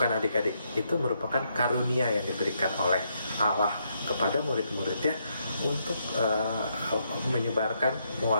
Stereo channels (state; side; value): inverted; both; correlation -0.77